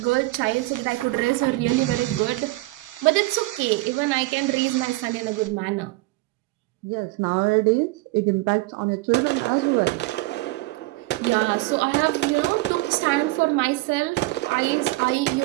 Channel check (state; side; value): quieter; left; 20.8 dB